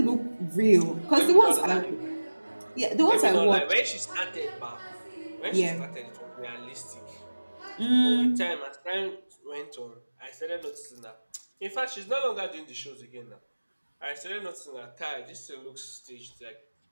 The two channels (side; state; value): both; inverted; correlation -1.00